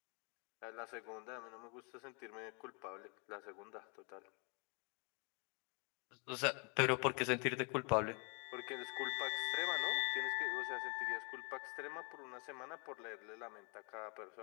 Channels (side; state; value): right; quieter; 34.7 dB